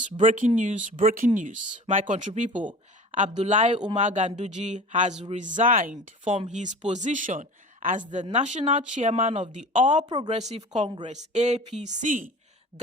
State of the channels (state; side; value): normal; both; correlation 0.39